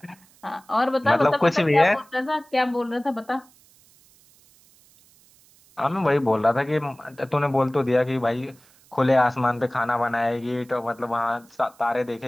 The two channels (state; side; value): noise; right; hiss, 29 dB below the sound